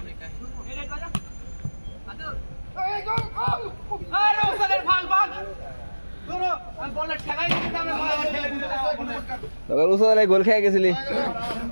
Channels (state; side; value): inverted; both; correlation -1.00